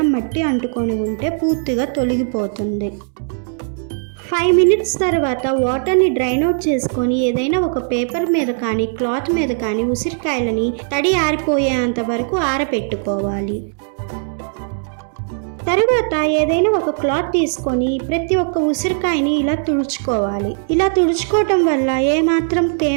మట్టి అంటుకొని ఉంటే పూర్తిగా తొలగిపోతుంది. 5 minutes తర్వాత వాటర్ని డ్రైన్ అవుట్ చేసుకొని ఏదైనా ఒక పేపర్ మీద కానీ క్లాత్ మీద కానీ ఉసిరికాయలని తడి ఆరిపోయేంత వరకు ఆరబెట్టుకోవాలి. తరువాత ఏదైనా ఒక క్లాత్ తీసుకొని ప్రతి ఒక్క ఉసిరికాయని ఇలా తుడుచుకోవాలి. ఇలా తుడుచుకోవటం వల్ల ఏమాత్రం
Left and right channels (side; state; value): left; silent; 67 dB below the other